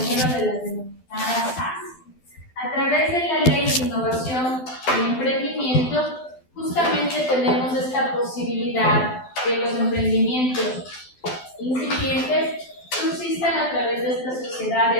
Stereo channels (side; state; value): right; late; 12 ms